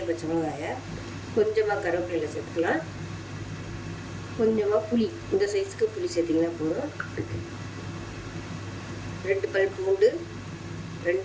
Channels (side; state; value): both; identical; correlation 1.00